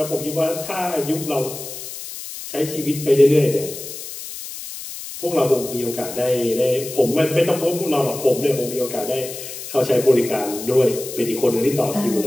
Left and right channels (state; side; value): noise; left; hiss, 10 dB below the sound